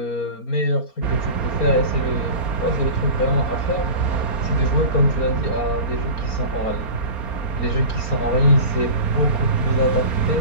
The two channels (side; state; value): right; late; 4.3 ms